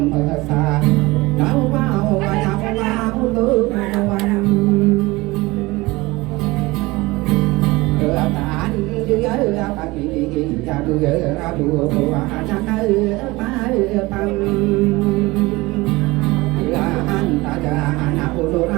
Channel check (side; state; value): left; quieter; 21.6 dB